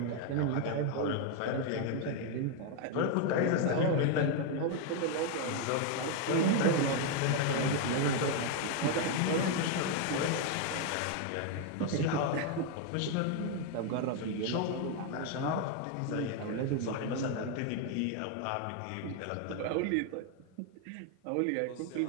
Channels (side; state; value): both; different; correlation 0.01